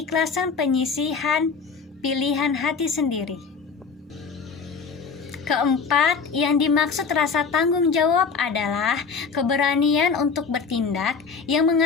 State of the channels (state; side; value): quieter; right; 5.3 dB